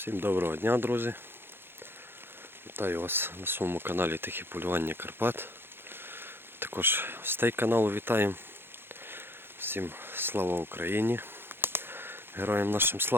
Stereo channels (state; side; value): late; left; 0.11 ms